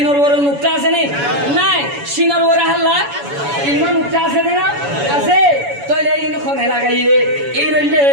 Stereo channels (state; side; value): late; left; 7.1 ms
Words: বড় নুক্তা আছে নে নাই সিনর বড় হাল্লা ইমান নুক্তা আছে না আছে তইলে ইন খনে লাগাইয়ে এই রইলে